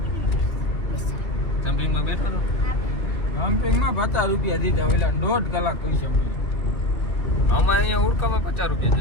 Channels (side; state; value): right; late; 2.3 ms